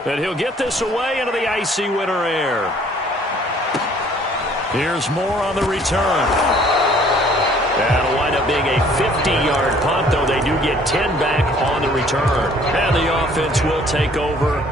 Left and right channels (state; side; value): normal; both; correlation 0.57